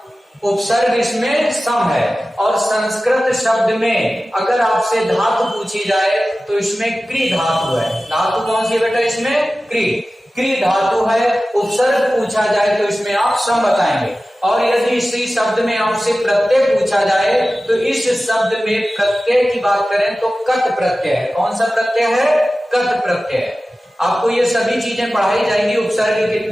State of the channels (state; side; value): normal; both; correlation 0.95